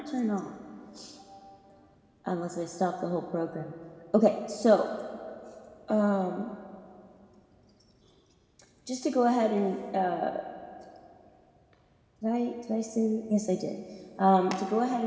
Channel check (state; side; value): identical; both; correlation 1.00